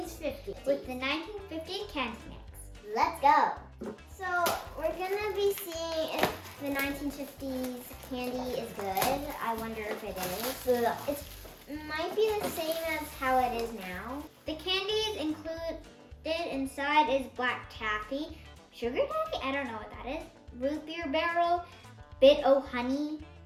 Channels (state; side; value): identical; both; correlation 1.00